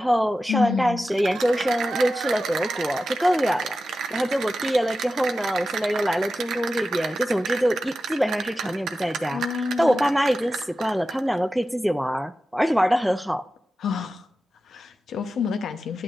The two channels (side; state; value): both; normal; correlation 0.92